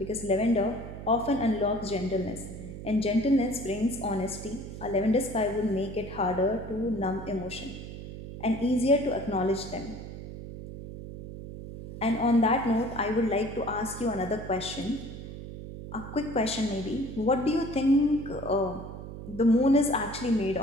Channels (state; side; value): noise; right; hum, 11 dB below the sound